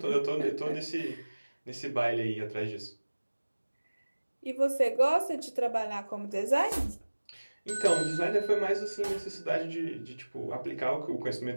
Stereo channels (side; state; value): both; inverted; correlation -1.00